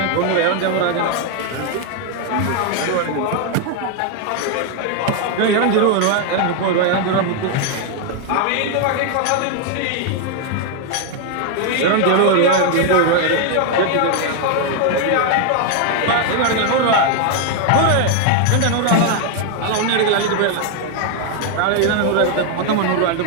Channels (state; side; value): different; both; correlation 0.01